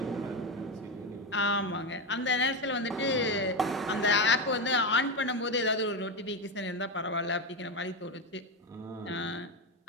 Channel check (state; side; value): normal; both; correlation 0.13